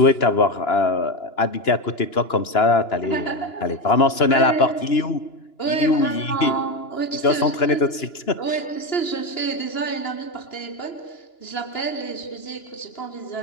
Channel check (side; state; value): right; late; 2.9 ms